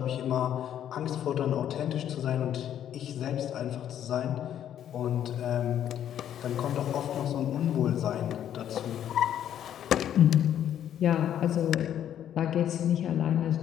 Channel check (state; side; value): quieter; right; 10.3 dB